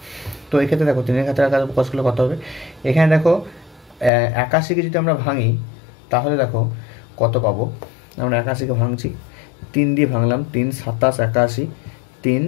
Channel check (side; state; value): right; drops out; at 4.1 s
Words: তো এক্ষেত্রে দেখো 3-এর ঘাতের আকারে প্রকাশ করলে কত হবে, এখানে দেখো 81কে যদি আমরা ভাঙি তাহলে দেখো কত পাবো, আমরা 81কে ভাঙছি, 3 দিয়ে ভাঙলাম, 3 27 81, 3